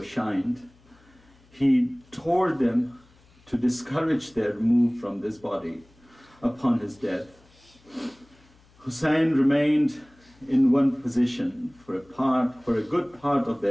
shined. He tore them to discourage their move from this body upon his death. Hussein remained in one position for a good part of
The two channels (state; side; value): noise; left; hum, 29 dB below the sound